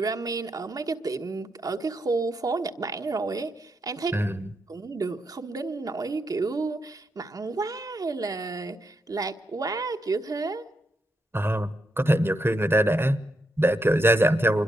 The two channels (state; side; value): normal; both; correlation 0.81